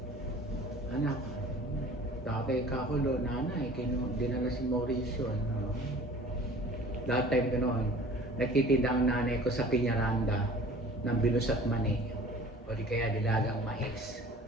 Anak. Tatay kakulo, nanay, dinala si Mauricio. That time gano'n, nagtitinda ang nanay ko sa Piñaranda ng binus at mani. O di kaya dilagang mais.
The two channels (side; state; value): both; normal; correlation 0.46